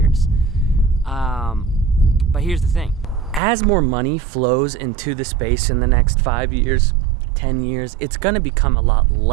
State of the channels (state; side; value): drops out; left; at 3.4 s